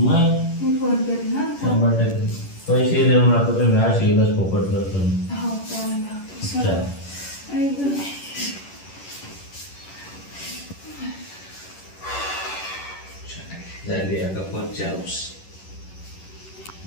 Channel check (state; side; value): late; right; 11 ms